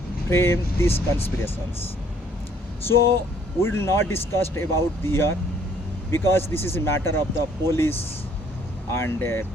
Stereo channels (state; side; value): normal; both; correlation 0.62